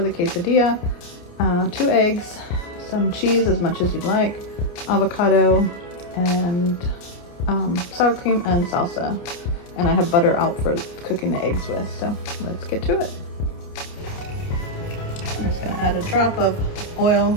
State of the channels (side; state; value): right; late; 29 ms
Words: the quesadilla, 2 eggs, some cheese as much as you'd like, avocado, and sour cream and salsa. And I have butter out for cooking the eggs with, so let's get to it. I'm just going to add a drop of